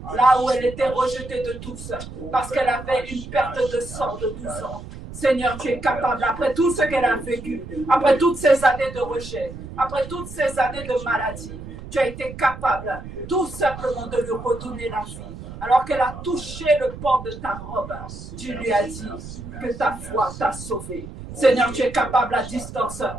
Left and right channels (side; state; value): right; noise; rumble, 12 dB below the sound